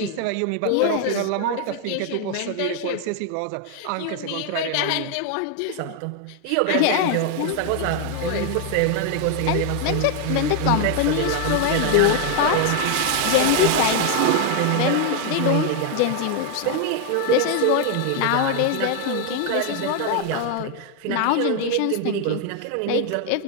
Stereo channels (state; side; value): different; both; correlation 0.01